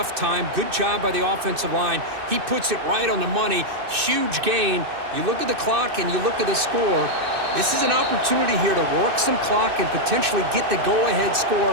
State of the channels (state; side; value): late; left; 2.6 ms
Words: time. Good job by the offensive line. He puts it right on the money. Huge gain. You look at the clock and you look at the score. This is an opportunity here to work some clock and potentially get the go-ahead